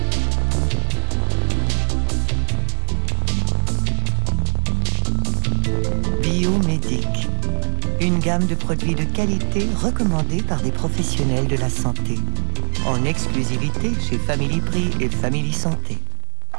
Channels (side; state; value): left; silent; digital silence